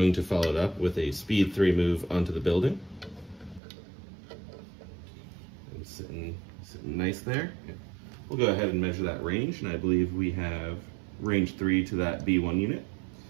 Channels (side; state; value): left; drops out; at 3.6 s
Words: to follow it up with a speed 3 move onto the building. And sitting nice there. We'll go ahead and measure that range, and I believe we have range 3 to that B1 unit.